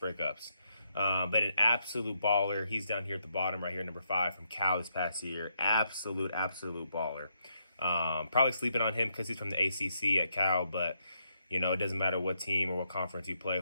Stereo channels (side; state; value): both; inverted; correlation -0.78